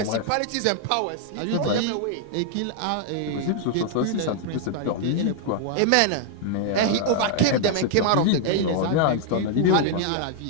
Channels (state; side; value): different; both; correlation 0.00